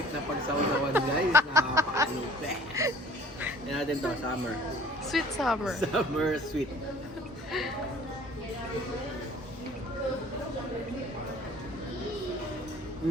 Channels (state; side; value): normal; both; correlation 0.50